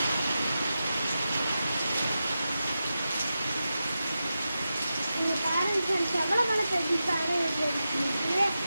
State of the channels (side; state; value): both; inverted; correlation -0.91